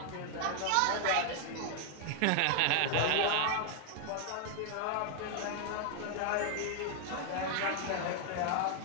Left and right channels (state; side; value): different; both; correlation 0.00